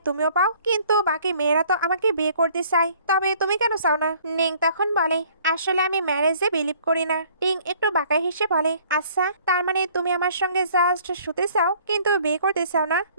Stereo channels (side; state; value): both; inverted; correlation -0.57